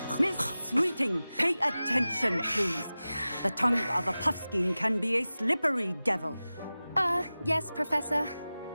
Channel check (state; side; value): inverted; both; correlation -0.96